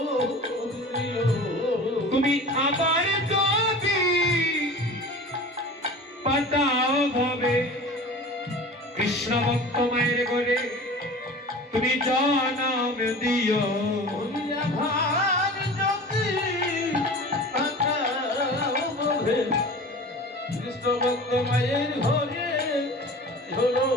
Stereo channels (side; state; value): both; normal; correlation 0.38